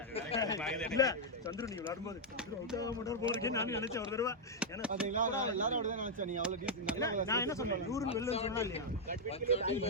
அது வேற இல்ல சந்திரு நீ விளையாடும்போது சந்திரு அவுட் ஆக மாட்டார் போல இருக்கே நான் நினைச்சேன் ஒரு தடவை. ஏன்னா பாத்தீங்களா, எல்லாரும் அப்படிதான் நினைச்சேன். நீ அவ்வளவு டீசன்ட் நல்லா. நான் என்ன சொன்னேன் 100 வெல்லன்னு சொன்னா இல்லையா?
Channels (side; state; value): both; normal; correlation -0.03